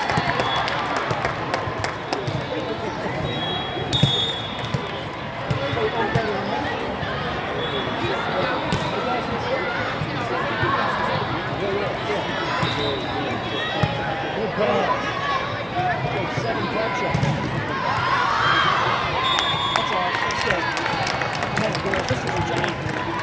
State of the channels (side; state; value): both; identical; correlation 1.00